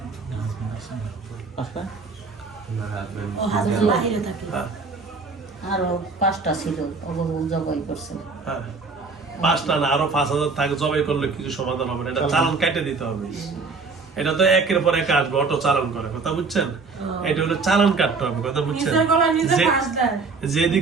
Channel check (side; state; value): left; quieter; 4.3 dB